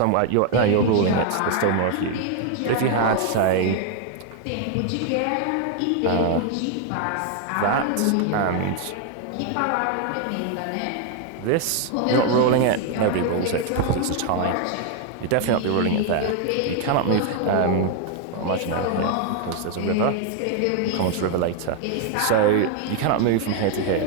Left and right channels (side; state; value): both; different; correlation 0.01